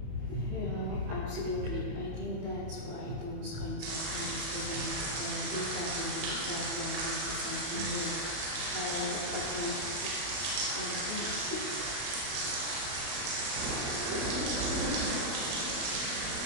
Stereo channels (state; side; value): late; left; 31 ms